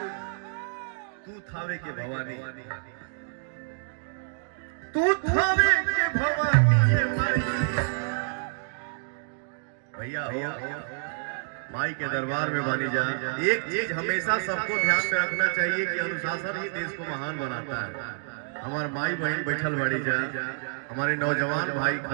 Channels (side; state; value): left; silent; digital silence